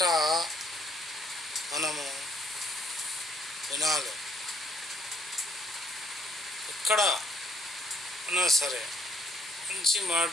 మనము వినాలి. ఎక్కడ ఉన్నా సరే మంచి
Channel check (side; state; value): both; normal; correlation 0.67